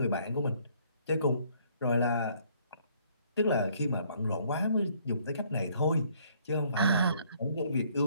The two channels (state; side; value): inverted; both; correlation -0.64